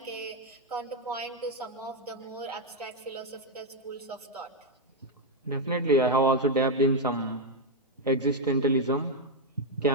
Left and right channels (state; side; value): normal; both; correlation 0.01